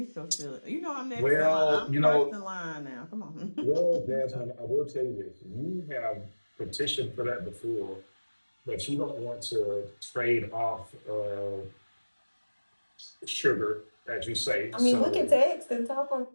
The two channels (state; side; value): inverted; both; correlation -1.00